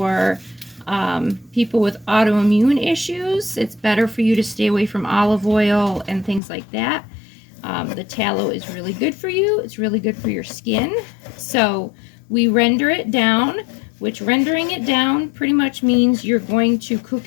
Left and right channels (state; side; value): drops out; right; at 6.4 s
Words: people with autoimmune issues. It's better for you to stay away from olive oil and things like that. The tallow is really good for you. It's really good for your skin. So we render it down, which rendering it down pretty much means you're going to cook